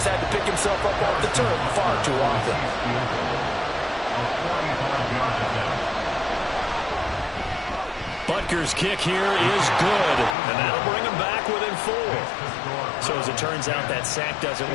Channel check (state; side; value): drops out; right; at 10.4 s